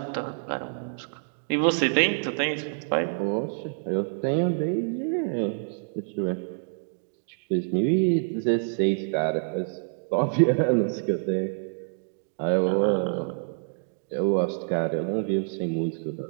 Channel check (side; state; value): left; silent; digital silence